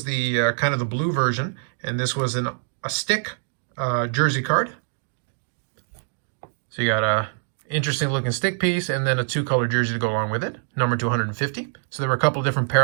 the kind of the blue version. And this was a stick jersey card. So you got a interesting looking stick piece and then a two-color jersey to go along with it, numbered to 150. So there were a couple of different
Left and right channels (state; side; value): silent; left; digital silence